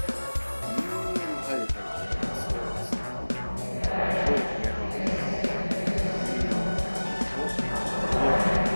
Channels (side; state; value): both; inverted; correlation -1.00